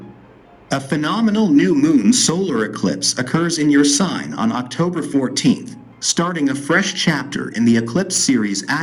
A phenomenal new moon solar eclipse occurs in your sign on October 14th, starting a fresh chapter in the eclipse series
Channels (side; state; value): both; identical; correlation 1.00